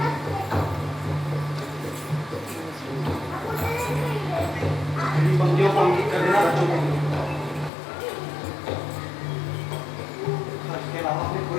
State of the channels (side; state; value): right; drops out; at 7.7 s